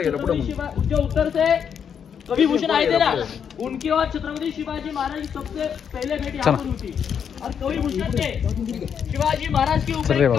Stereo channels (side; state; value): right; quieter; 7.6 dB